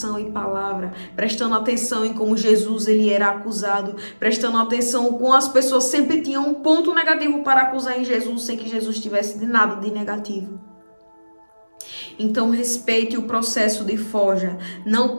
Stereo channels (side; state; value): both; inverted; correlation -1.00